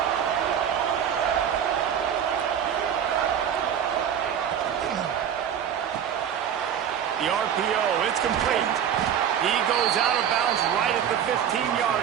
The RPO, it's complete. He goes out of bounds right at the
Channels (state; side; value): quieter; left; 8.9 dB